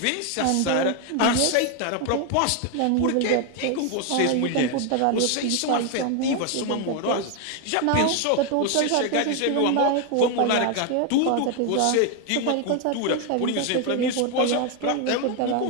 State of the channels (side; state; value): both; different; correlation 0.01